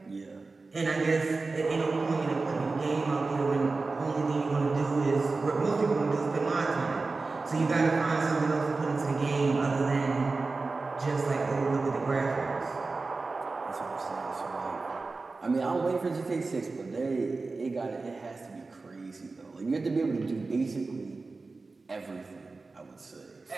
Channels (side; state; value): left; quieter; 3.8 dB